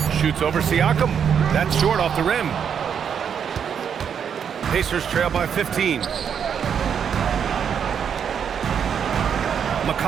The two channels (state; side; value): quieter; left; 7.7 dB